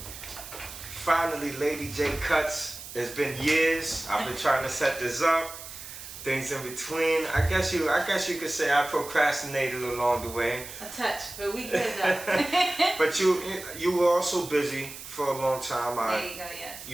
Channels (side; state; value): right; noise; hiss, 12 dB below the sound